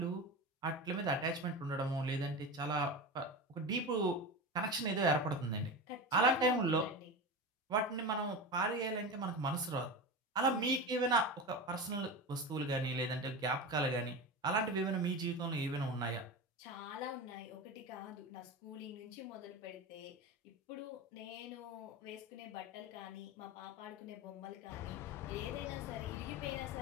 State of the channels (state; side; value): normal; both; correlation 0.24